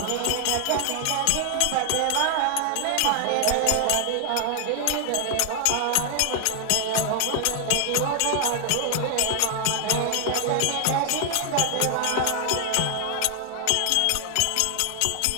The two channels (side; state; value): both; different; correlation 0.00